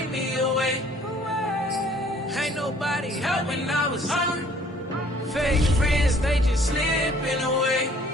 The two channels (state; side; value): normal; both; correlation 0.57